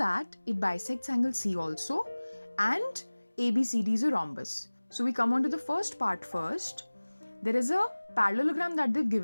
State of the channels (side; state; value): both; inverted; correlation -1.00